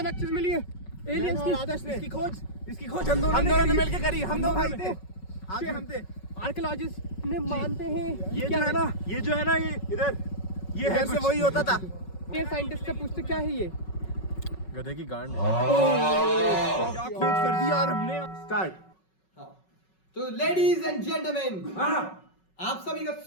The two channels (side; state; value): right; late; 5.4 ms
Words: चीज मिली है, एलियंस की। इसकी खोज हम दोनों ने मिलकर करी। हम दो भाई थे, आगे हम थे। आर्कियोलॉजिस्ट ने मानते हैं ये जो है ना ये इधर ये है से वही होता था। ये साइंटिस्ट से पूछते क्या है ये? गधे की गांड है। क्या खोज कर दी यार हमने। स्टार्ट। तो लेडीज एंड जेंटलमैन, आप सभी का